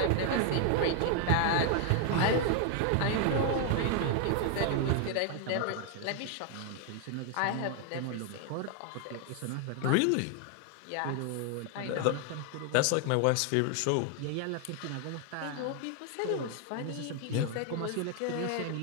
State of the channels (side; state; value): both; different; correlation 0.00